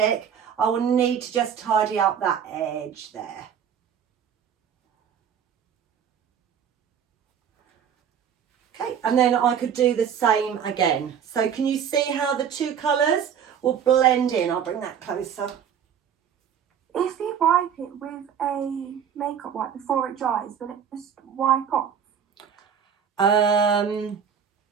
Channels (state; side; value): quieter; left; 8.1 dB